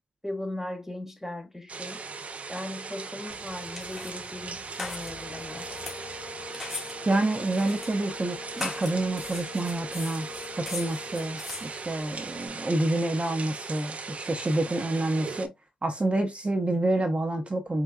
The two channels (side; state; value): both; normal; correlation 0.85